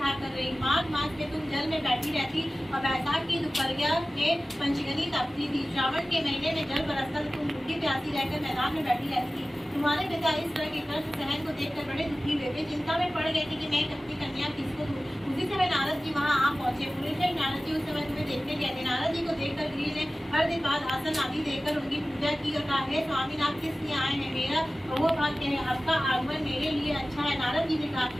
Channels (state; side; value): normal; both; correlation 0.97